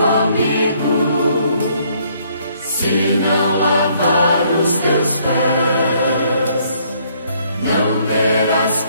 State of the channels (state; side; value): inverted; both; correlation -0.66